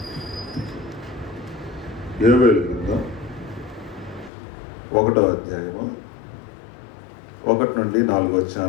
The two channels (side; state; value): right; drops out; at 4.3 s